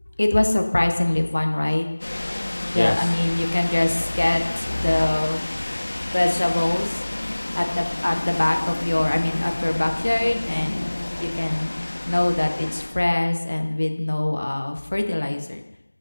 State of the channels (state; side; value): inverted; both; correlation -1.00